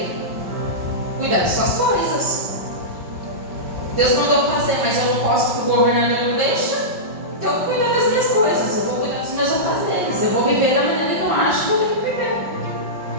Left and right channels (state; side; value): late; left; 5.6 ms